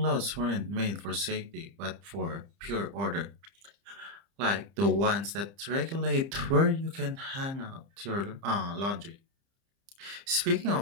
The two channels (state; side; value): late; left; 30 ms